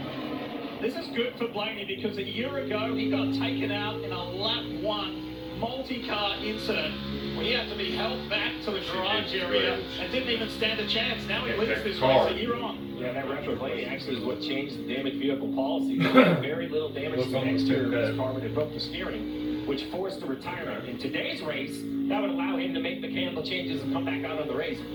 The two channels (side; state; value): both; identical; correlation 1.00